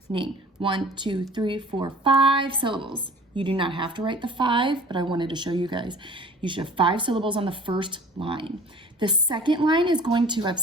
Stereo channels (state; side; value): normal; both; correlation 0.46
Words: 1, 2, 3, 4, 5 syllables. You do not have to write the 5, but I wanted to show you guys. You should have 5 syllables on the first line. The second line is going to have